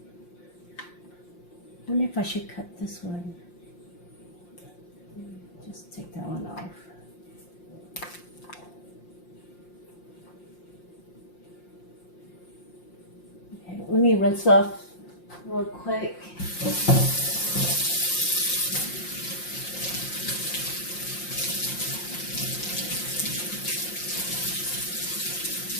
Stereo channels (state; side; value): late; right; 5.7 ms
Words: I wonder if I should cut this one. Just take that one off. Okay, let me rinse off real quick.